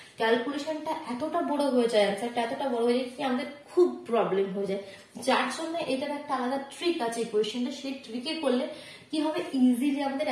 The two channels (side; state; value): both; identical; correlation 1.00